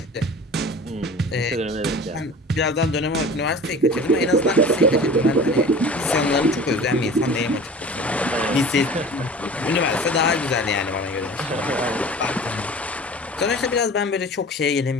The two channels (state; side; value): normal; both; correlation 0.40